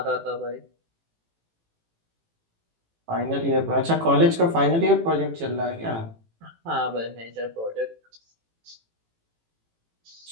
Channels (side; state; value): left; late; 18 ms